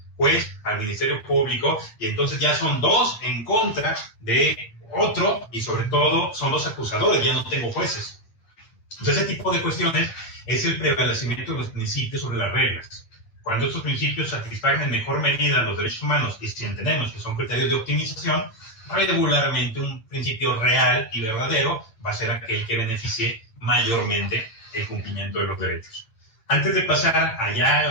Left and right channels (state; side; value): late; right; 8.9 ms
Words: juez, al Ministerio Público, y entonces ya son dos en contra de Otro, y sobre todo, son los acusadores, ya no tengo jueces. Entonces, ese tipo de cuestiones es el prevalecimiento de los principios sobre las reglas. Cuando estos principios satisfagan en mejor medida los derechos humanos, y si entendemos que son criterios de optimización, regularmente un principio real y verdadero va a ser aquel que beneficie mayormente el cumplimiento de los derechos. Antes de pasar allá